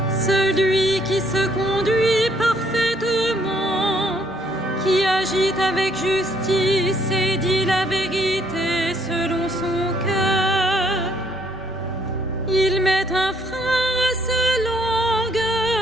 celui qui se conduit parfaitement, qui agit avec justice et dit la vérité selon son cœur. Il met un frein à sa langue,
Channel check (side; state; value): both; normal; correlation 0.67